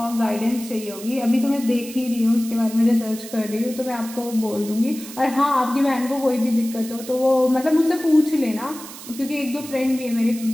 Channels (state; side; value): noise; right; hiss, 14 dB below the sound